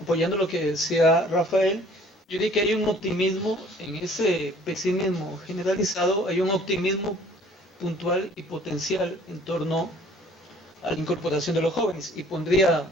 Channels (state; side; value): normal; both; correlation 0.54